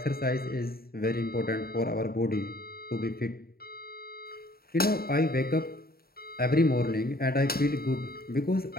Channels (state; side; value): late; right; 0.44 ms